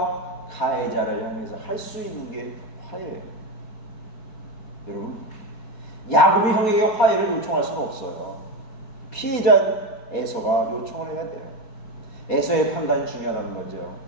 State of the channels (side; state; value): right; late; 4.6 ms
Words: 가해자를 향해서 할 수 있는 게 화해예요. 여러분, 야곱이 형에게 화해를 요청할 수는 없어요. 피해자 에서가 요청을 해야 돼요. 에서의 판단이 중요하다는 거죠.